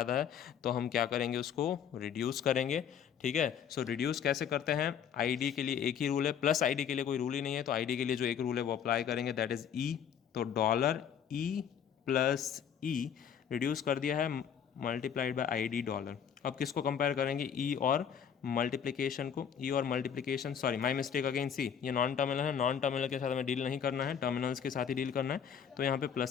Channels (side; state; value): right; quieter; 8.1 dB